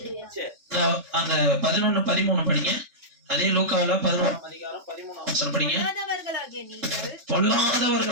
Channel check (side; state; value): left; late; 3.5 ms